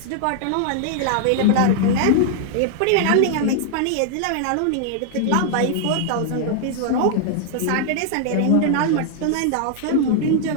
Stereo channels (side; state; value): both; different; correlation -0.01